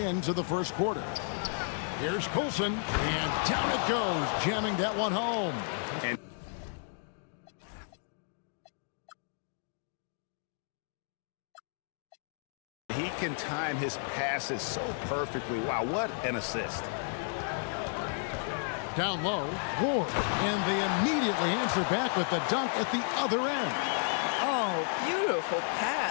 the first quarter. Here's Colson, and down it goes, jamming that one home. And he can time his passes so perfectly. Wow, what an assist. Down low, Ward, and they immediately answer back with the dunk at the other end. Oh, beautiful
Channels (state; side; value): silent; right; 56 dB below the other